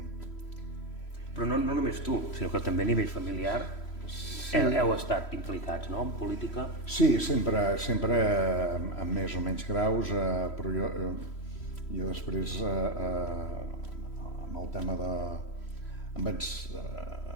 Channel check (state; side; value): late; right; 3.1 ms